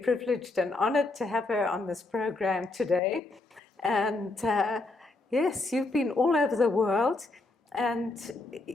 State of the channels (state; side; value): quieter; right; 3.1 dB